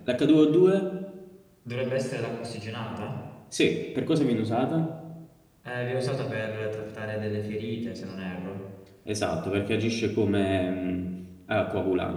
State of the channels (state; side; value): identical; both; correlation 1.00